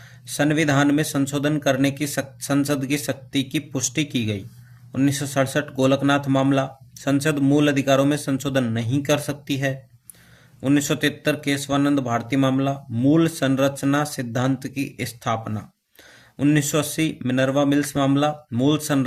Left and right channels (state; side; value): identical; both; correlation 1.00